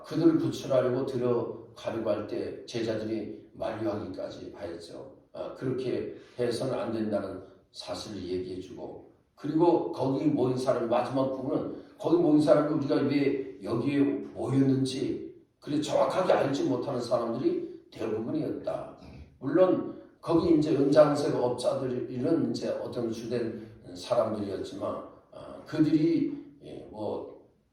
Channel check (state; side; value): identical; both; correlation 1.00